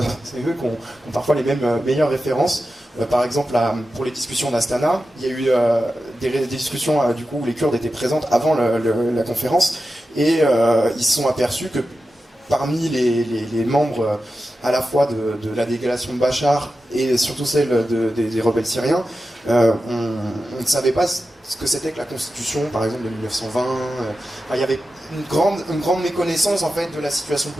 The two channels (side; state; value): both; normal; correlation 0.92